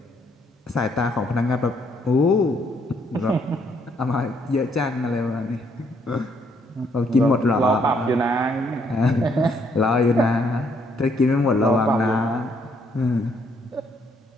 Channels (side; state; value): both; normal; correlation 0.70